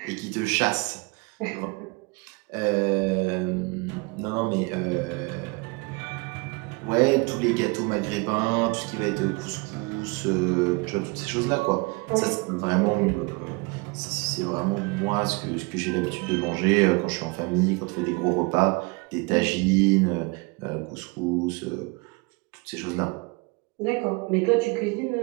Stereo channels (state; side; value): quieter; left; 28.2 dB